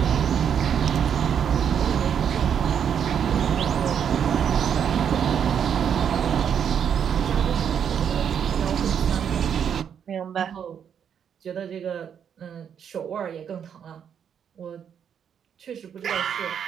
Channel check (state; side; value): quieter; left; 8.1 dB